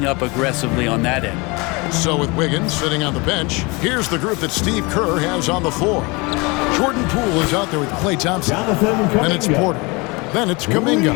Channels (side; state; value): right; quieter; 26.6 dB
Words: up aggressively on that end. So with Wiggins sitting on the bench, here's the group that Steve Kerr has on the floor. Jordan Poole is out there with Klay Thompson. Then it's Porter. Then it's Kuminga.